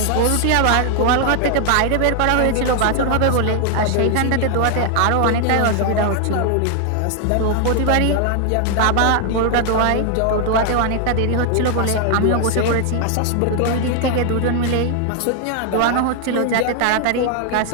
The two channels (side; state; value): both; different; correlation 0.00